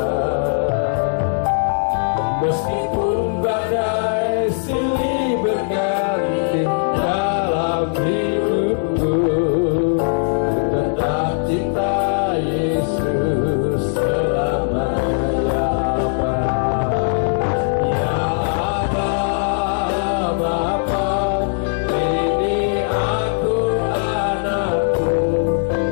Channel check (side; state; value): right; silent; digital silence